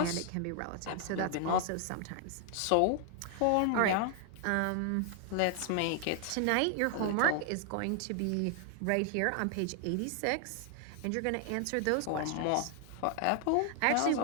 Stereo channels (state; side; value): different; both; correlation 0.00